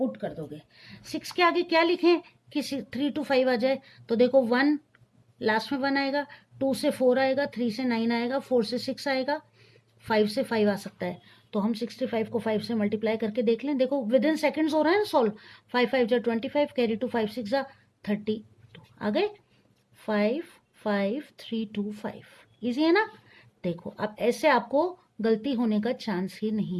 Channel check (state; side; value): identical; both; correlation 1.00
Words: कर दोगे। 6 के आगे क्या लिखें कि 3 to 5 आ जाए, तो देखो 1 लास्ट में 1 आएगा, 2 से 4 आएगा, 3 से 9 आएगा, 4 से 6 आएगा, 5 से 5 आ सकता है। तो हम 65 को 5 से मल्टीप्लाई करके देख लें, देखो विद इन सेकेंड्स हो रहा है ना सॉल्व। 5 5 जा 25, कैरी टू 5 6 जा 32 आ गए, 5 5 3 2 5। इजी है ना। देखो अब ऐसे आपको गलती होने का चांस ही नहीं